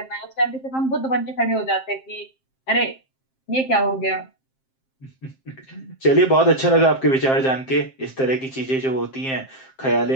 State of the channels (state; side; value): late; right; 7.6 ms